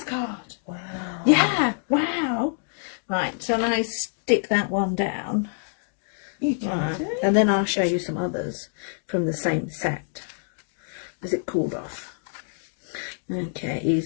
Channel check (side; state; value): right; silent; digital silence